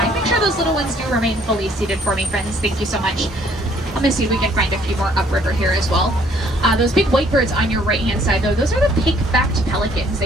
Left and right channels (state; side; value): normal; both; correlation 0.62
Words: Make sure those little ones do remain fully seated for me, friends. Thank you so much. Let me see if we can find a few more upriver here as well. Those big white birds on your right-hand side, though, those are the pink-backed pelicans.